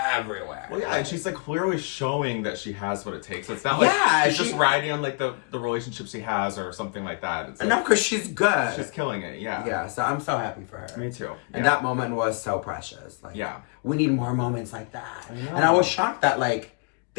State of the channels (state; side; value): quieter; right; 33.9 dB